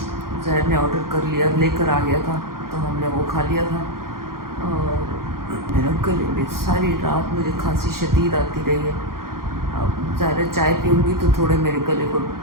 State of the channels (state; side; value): late; left; 0.92 ms